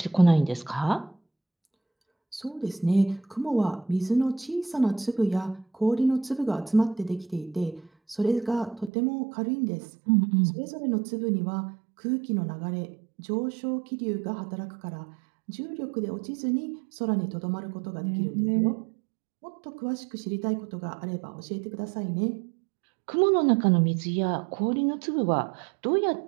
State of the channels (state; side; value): drops out; left; at 8.9 s